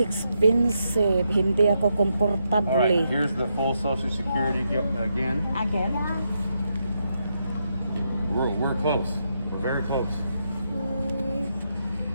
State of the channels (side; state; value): both; inverted; correlation -0.82